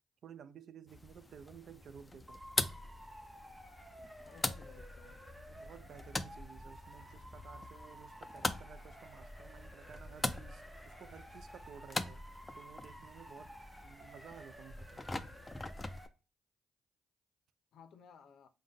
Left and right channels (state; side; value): normal; both; correlation 0.93